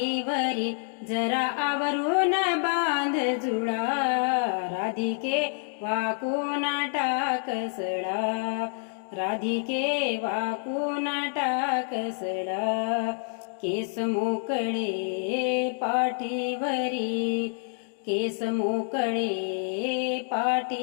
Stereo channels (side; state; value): right; silent; 58 dB below the other